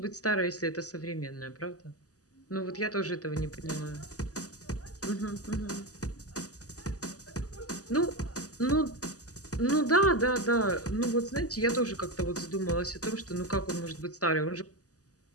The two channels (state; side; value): late; right; 0.67 ms